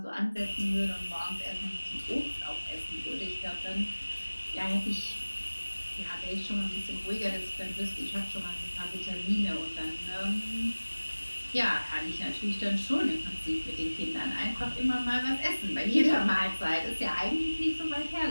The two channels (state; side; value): inverted; both; correlation -1.00